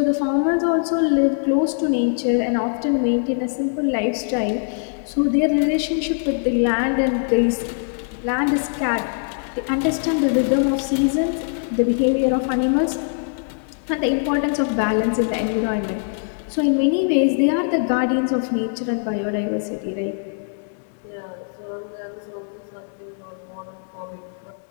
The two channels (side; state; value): right; silent; digital silence